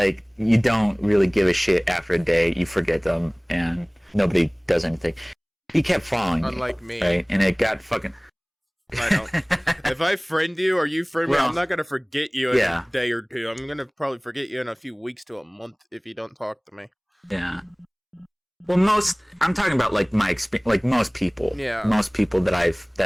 you don't really give a shit after a day. You forget them, and nobody does anything. He kept following Unlike me. right? And it got fucking. I don't. If I friend you or you friend me, I'm not gonna forget you in a day or two. I'm gonna probably forget you in a few weeks to a month if you don't talk to me. Yeah. Well, I'm talking about like my experience, like most people. Yeah. Most people that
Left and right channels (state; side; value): identical; both; correlation 1.00